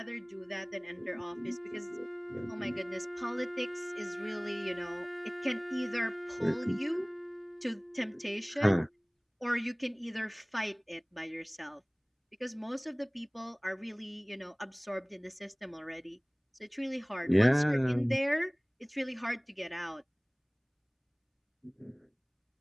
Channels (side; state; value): both; identical; correlation 1.00